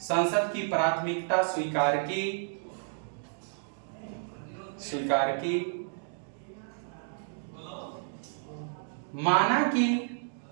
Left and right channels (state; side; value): silent; left; digital silence